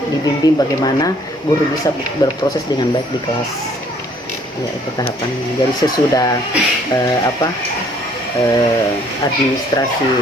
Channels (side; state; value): both; normal; correlation 0.61